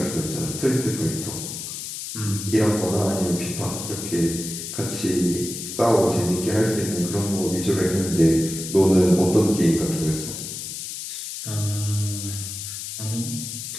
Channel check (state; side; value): noise; left; hiss, 7 dB below the sound